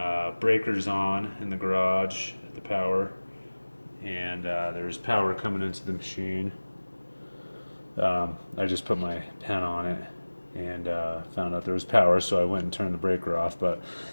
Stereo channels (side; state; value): both; inverted; correlation -1.00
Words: breakers on in the garage at the power, and there's power coming into the machine. I just put my pen on it and found out there was power, so I went and turned the breaker off. But